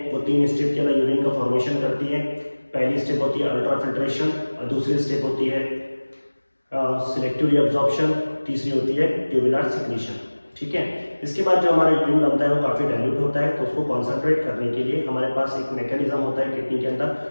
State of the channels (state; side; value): inverted; both; correlation -1.00